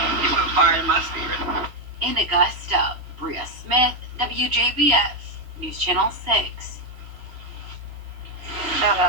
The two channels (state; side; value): late; left; 3.0 ms